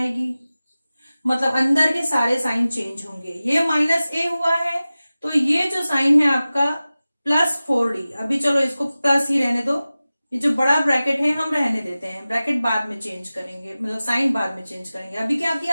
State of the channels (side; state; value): both; inverted; correlation -0.96